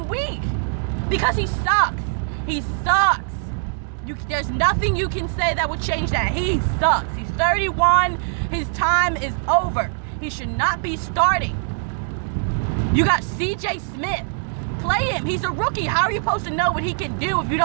week. Because he sucks. He sucks. There's nothing you can say that would change that. He sucks. He's 31. His time is over. He should not be starting. You got CJ Smith play him. He's a rookie. How are you supposed to know what he can do if you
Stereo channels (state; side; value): silent; left; 64 dB below the other